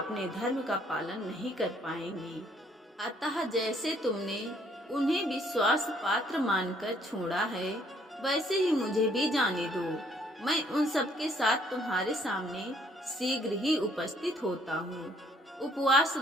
धर्म का पालन नहीं कर पाएंगी। अतः जैसे तुमने उन्हें विश्वास पात्र मानकर छोड़ा है, वैसे ही मुझे भी जाने दो। मैं उन सबके साथ तुम्हारे सामने शीघ्र ही उपस्थित होता हूँ। उपवास,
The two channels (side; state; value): both; normal; correlation 0.64